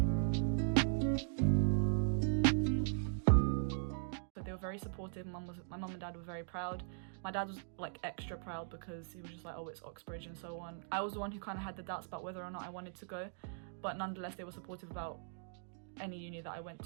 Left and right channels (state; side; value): silent; left; digital silence